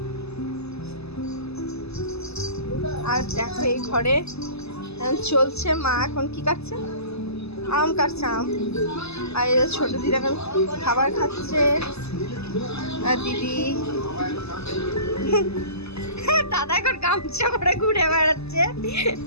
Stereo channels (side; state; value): right; late; 0.79 ms